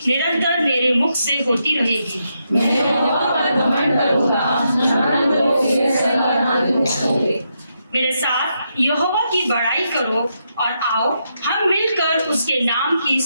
निरंतर मेरे मुख से होती रहेगी। मैं यहोवा पर घमंड करूंगा, मेरे साथ यहोवा की बड़ाई करो और आओ हम मिलकर उसके नाम की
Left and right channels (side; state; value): both; inverted; correlation -0.82